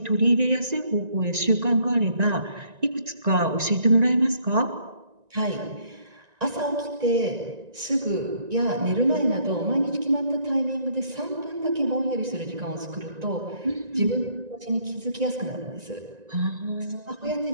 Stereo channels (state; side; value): late; left; 1.9 ms